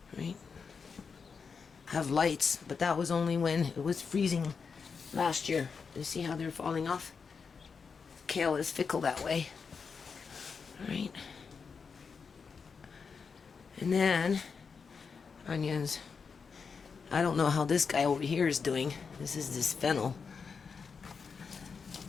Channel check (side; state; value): right; quieter; 5.6 dB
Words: right? I have lights, but that was only when it was freezing last year. You see how they're falling off? Kale is fickle that way. Alright. And then, onions. I don't know how this guy over here is doing. This is this fennel.